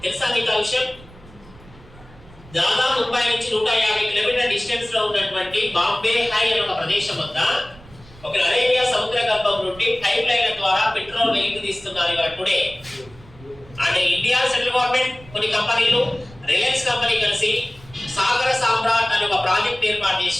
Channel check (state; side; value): noise; right; rumble, 22 dB below the sound